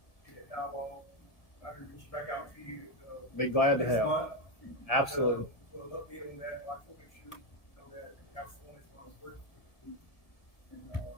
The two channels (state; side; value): late; right; 1.8 ms